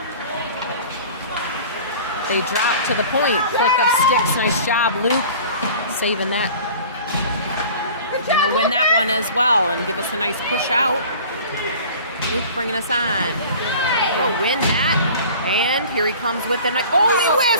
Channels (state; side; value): inverted; both; correlation -0.43